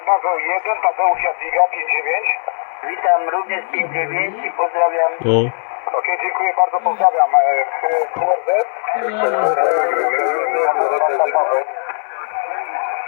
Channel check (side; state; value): right; silent; 61 dB below the other